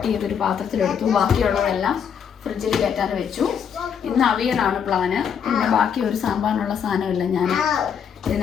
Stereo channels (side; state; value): right; quieter; 7.6 dB